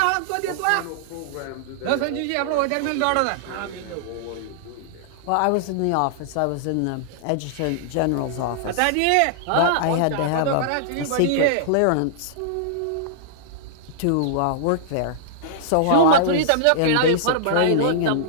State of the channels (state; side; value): different; both; correlation -0.01